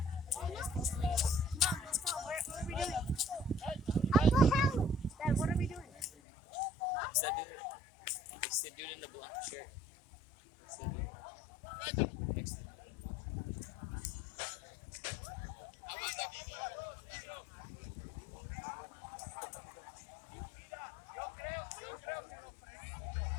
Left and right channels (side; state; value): right; drops out; at 6.1 s